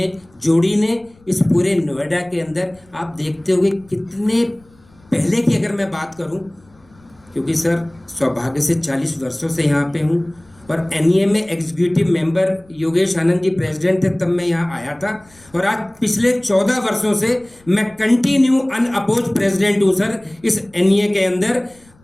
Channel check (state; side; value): noise; left; rumble, 29 dB below the sound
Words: जोड़ी ने, इस पूरे नोएडा के अंदर आप देखते होंगे कितने पहले की अगर मैं बात करूं, क्योंकि सर सौभाग्य से 40 वर्षों से यहाँ पे हूँ और एनईए में executive member Yogesh Anand ji president थे तब मैं यहाँ आया था, और आज पिछले 14 वर्षों से मैं कंटिन्यू अनअपोज प्रेसिडेंट हूँ सर इस एनईए के अंदर,